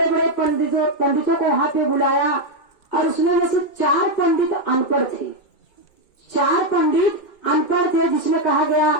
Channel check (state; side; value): late; right; 2.2 ms